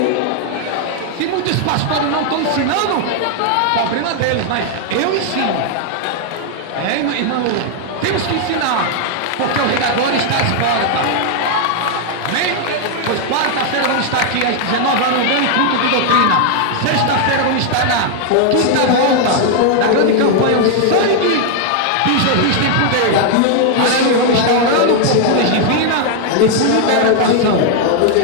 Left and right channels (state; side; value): different; both; correlation 0.00